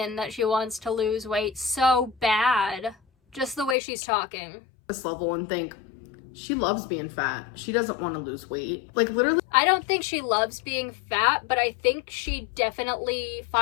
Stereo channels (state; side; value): drops out; right; at 3.8 s